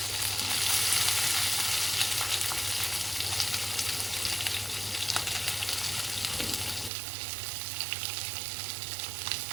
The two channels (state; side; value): drops out; left; at 6.9 s